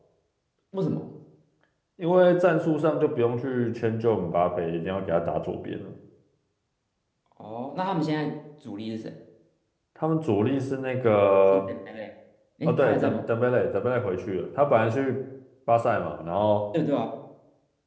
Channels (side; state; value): both; identical; correlation 1.00